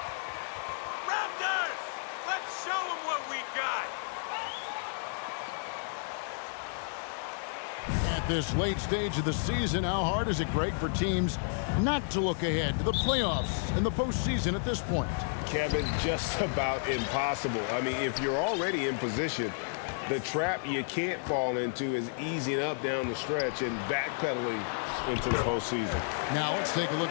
Raptors! Let's show them what we got! At this late stage of the season, how hard is it, Greg, for teams not to look ahead to the playoffs and the postseason at this point? Kevin, just about impossible. I mean, if you're already in position, the trap you can't fall into is easing up down the stretch and backpedaling into the postseason. Now let's take a look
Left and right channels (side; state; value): right; silent; digital silence